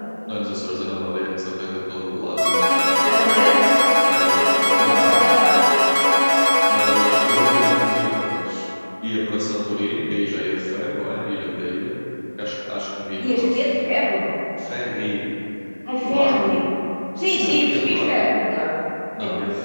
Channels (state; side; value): inverted; both; correlation -1.00